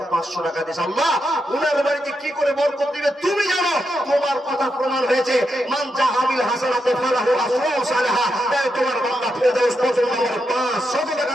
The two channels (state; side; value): normal; both; correlation 0.84